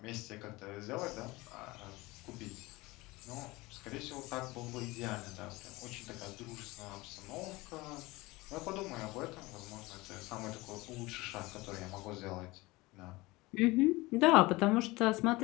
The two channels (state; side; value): quieter; right; 21.5 dB